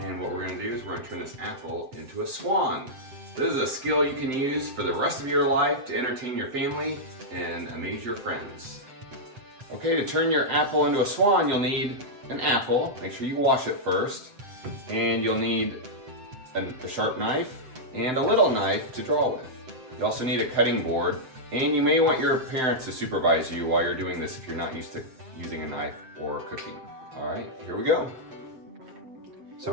And what we're going to do is we're going to turn this apple into a swan. This is a skill you can use for the rest of your life to entertain your family and amaze your friends. Okay, to turn your apple into a swan you'll need an apple, make sure you wash it first, and you'll need a sharp knife and a little knife to draw with. You also need a cutting board. And you may want your parents to supervise you while you're doing this if you're not used to using a knife or cooking. All right, here we go.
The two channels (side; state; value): left; late; 7.8 ms